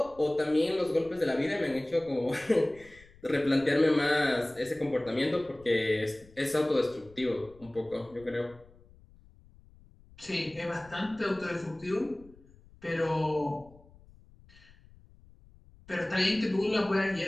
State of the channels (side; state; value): left; noise; rumble, 25 dB below the sound